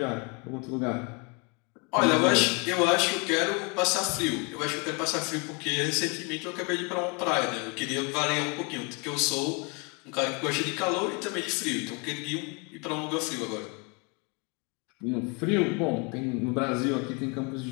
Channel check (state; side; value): quieter; right; 31.6 dB